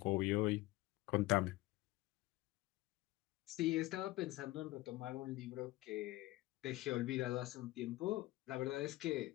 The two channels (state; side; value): quieter; right; 18.7 dB